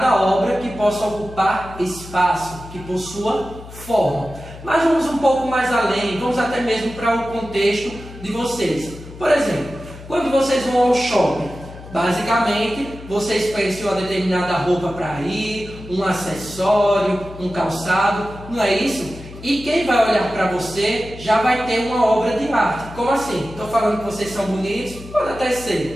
obra que possa ocupar espaço, que possua forma. Mas vamos um pouco mais além, vamos até mesmo para o contexto de vocês. Por exemplo, quando vocês vão ao shopping, basicamente, vocês pensam em uma determinada roupa para ir, um acessório, um calçado, não é isso? E quem vai olhar para você já vai ter uma obra de arte. Como assim? Estou falando que vocês são bonitos? Pode até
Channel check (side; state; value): left; noise; hum, 15 dB below the sound